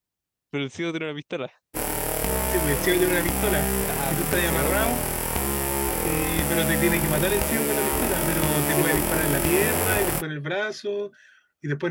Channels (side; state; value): both; identical; correlation 1.00